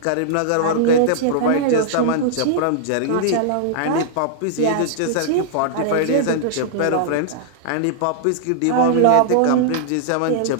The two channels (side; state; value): both; different; correlation -0.01